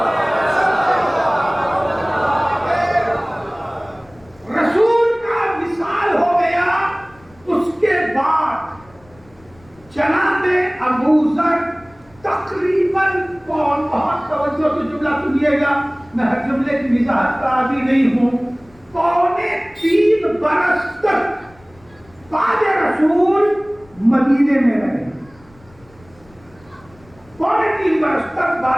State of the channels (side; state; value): left; noise; rumble, 28 dB below the sound